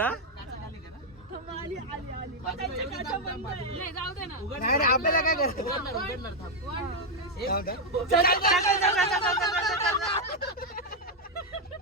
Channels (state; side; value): normal; both; correlation 0.00